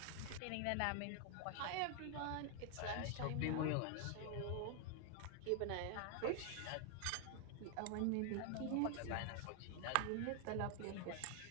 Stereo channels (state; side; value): different; both; correlation 0.00